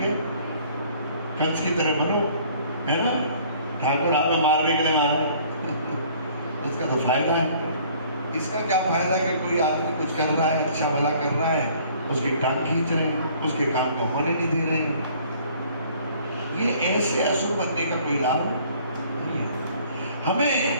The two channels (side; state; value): both; inverted; correlation -0.56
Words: है, कंस की तरह बनो, है ना? ठाकुर आगे मारने के लिए मारे उसका तो फायदा है। इसका क्या फायदा कि कोई आदमी कुछ कर रहा है, अच्छा भला कर रहा है, उसकी टांग खींच रहे हैं, उसके काम को होने नहीं दे रहे हैं। ये ऐसे असुर बनने का कोई लाभ नहीं है। हमें